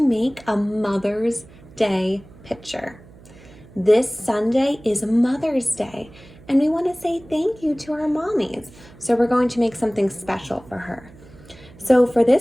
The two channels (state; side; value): noise; right; hum, 22 dB below the sound